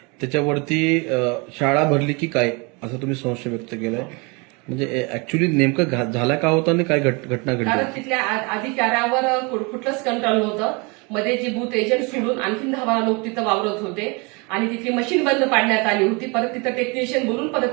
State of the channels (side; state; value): left; quieter; 29.7 dB